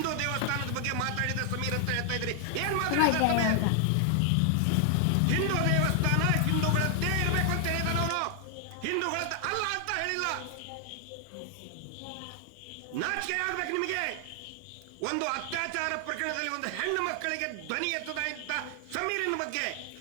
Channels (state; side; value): different; both; correlation 0.00